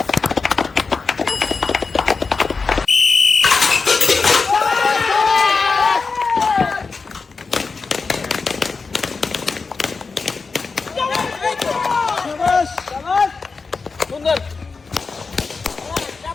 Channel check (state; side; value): quieter; right; 4.5 dB